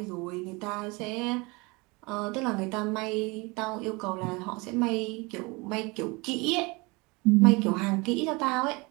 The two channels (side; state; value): left; quieter; 26.2 dB